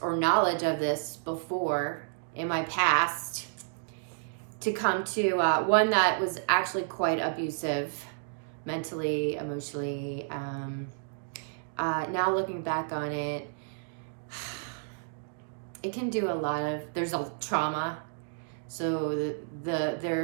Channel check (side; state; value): left; silent; digital silence